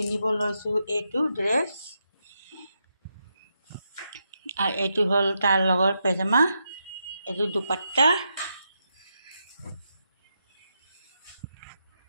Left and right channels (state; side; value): inverted; both; correlation -0.84